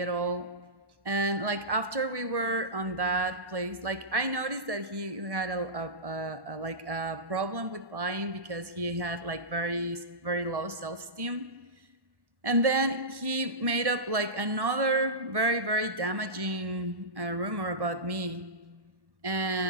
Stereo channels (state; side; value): late; left; 1.1 ms